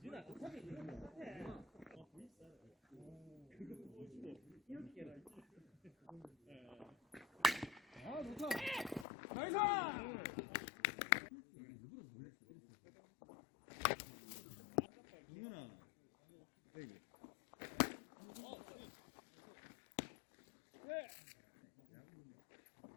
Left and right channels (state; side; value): drops out; right; at 9.1 s